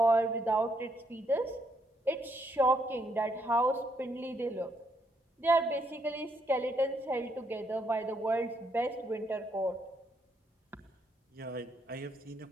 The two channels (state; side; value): normal; both; correlation 0.74